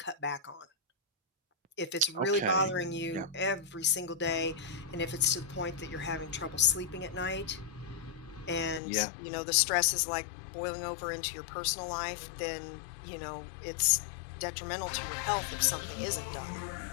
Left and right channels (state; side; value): drops out; right; at 8.8 s